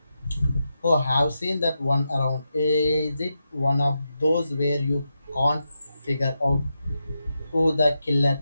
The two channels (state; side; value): inverted; both; correlation -0.87